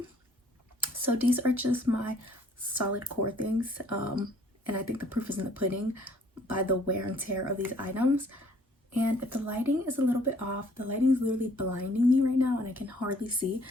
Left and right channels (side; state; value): both; normal; correlation 0.60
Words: So these are just my solid core things, and I think the proof is in the pudding by the wear and tear of these items. And if the lighting is a little bit off, the lighting is literally blinding me right now and I can hardly see.